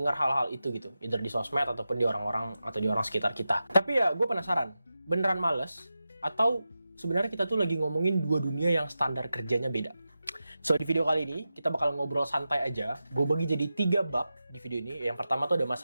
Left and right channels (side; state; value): both; inverted; correlation -0.92